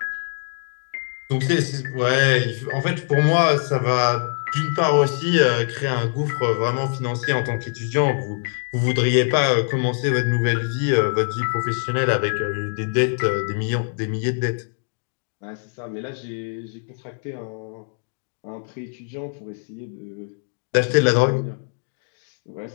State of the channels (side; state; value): right; silent; digital silence